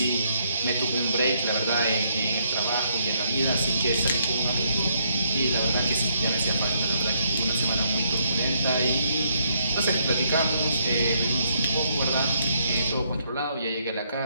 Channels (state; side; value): inverted; both; correlation -0.73